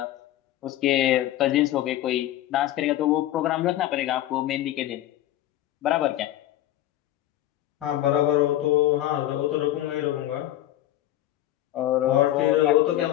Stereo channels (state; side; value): quieter; right; 13.8 dB